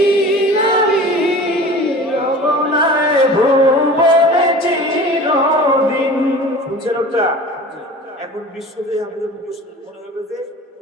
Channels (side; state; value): both; normal; correlation 0.39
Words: আমি রবনায় ভুবনে চিরদিন। শুনছেন ওটা? এখন বিশ্বজয়ী আমাদের মুখস্থ মনে হবে যে